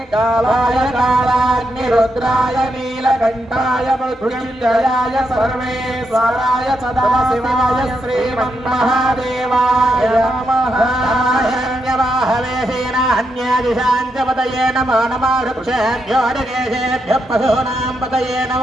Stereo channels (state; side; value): normal; both; correlation 0.82